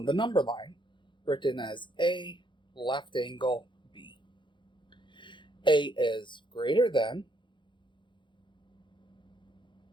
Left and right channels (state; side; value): late; right; 0.23 ms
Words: the number line, written as a left angle b. A is greater than